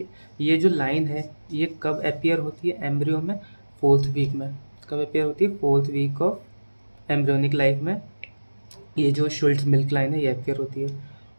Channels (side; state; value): both; inverted; correlation -1.00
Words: ये जो लाइन है ये कब अपियर होती है एम्ब्रियो में? 4th वीक में। कब अपियर होती है? 4th week of embryonic life में ये जो शुल्ट्ज मिल्क लाइन है ये अपियर होती है।